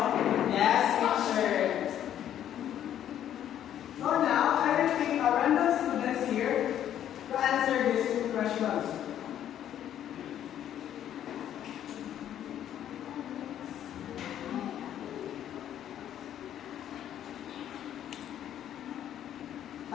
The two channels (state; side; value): quieter; right; 10.7 dB